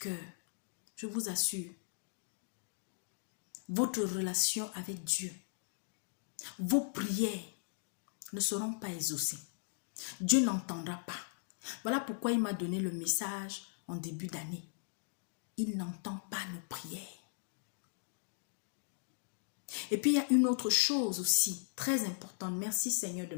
je vous assure, votre relation avec Dieu, vos prières ne seront pas exaucées. Dieu n'entendra pas. Voilà pourquoi il m'a donné le message en début d'année. Il n'entend pas nos prières. Et puis il y a une autre chose aussi très importante. Merci Seigneur de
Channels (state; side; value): silent; right; digital silence